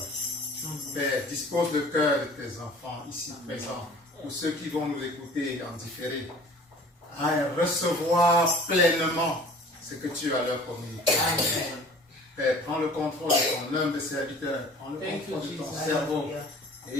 Père, dispose le cœur de tes enfants ici présents, ou ceux qui vont nous écouter en différé, à recevoir pleinement ce que tu as à leur communiquer. Père, prends le contrôle de ton humble serviteur, prends le contrôle de ton cerveau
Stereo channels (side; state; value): both; normal; correlation 0.47